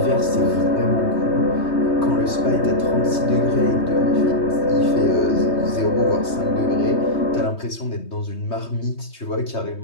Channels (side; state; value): right; late; 3.2 ms